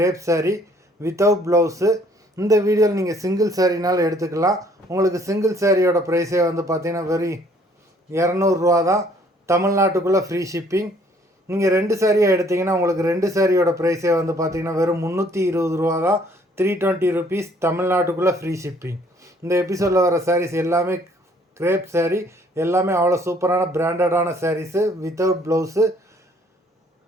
சாரீ வித்தவுட் ப்ளவுஸு. இந்த வீடியோவில் நீங்கள் சிங்கிள் சாரீனாலும் எடுத்துக்கலாம். உங்களுக்கு சிங்கிள் சாரியோட ப்ரைஸே பார்த்திங்கன்னா வெறும் 200 தான். தமிழ்நாட்டுக்குள்ளே ஃப்ரீ ஷிப்பிங். நீங்கள் 2 சாரியாக எடுத்திங்கன்னா உங்களுக்கு 2 சாரியோட ப்ரைஸே பார்த்திங்கன்னா வெறும் 320 தான். 320 ருபீஸ், தமிழ்நாட்டுக்குள்ளே ஃப்ரீ ஷிப்பிங். இந்த எபிசோடில் வர சாரீஸ் எல்லாமே கிரேப் சாரீ, எல்லாமே அவ்வளோ சூப்பரான பிராண்டடான saris without blouse.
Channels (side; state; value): both; normal; correlation 0.61